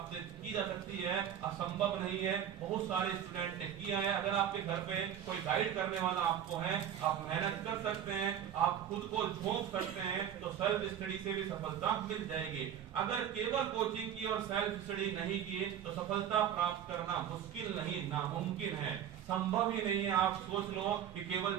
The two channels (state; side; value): quieter; left; 9.7 dB